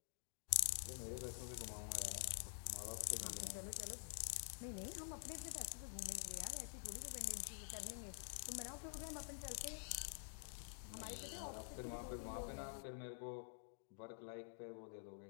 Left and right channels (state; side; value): silent; right; digital silence